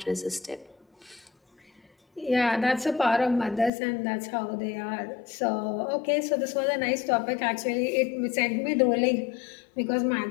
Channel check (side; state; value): right; drops out; at 3.7 s